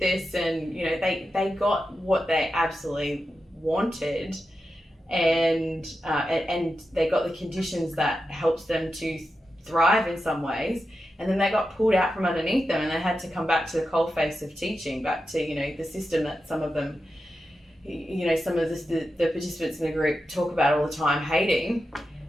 And, you know, they got what they absolutely wanted, and they got the conditions that helps them to thrive in some ways. And then they got pulled out from underneath them, and they had to come back to the coalface of teaching, back to, you know, the system that some of them, you know, some of the participants in the group talk about all the time hating.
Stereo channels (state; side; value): normal; both; correlation 0.90